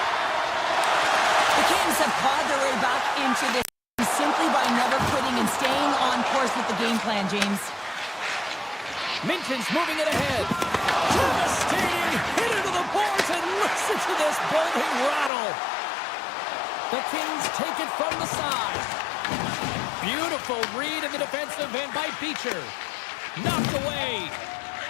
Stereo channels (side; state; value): right; drops out; at 15.3 s